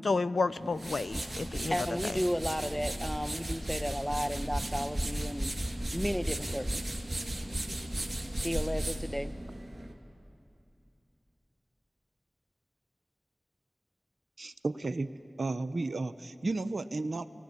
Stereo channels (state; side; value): normal; both; correlation 0.96